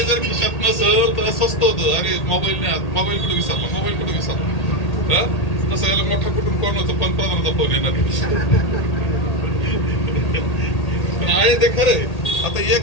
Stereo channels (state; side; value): late; right; 1.8 ms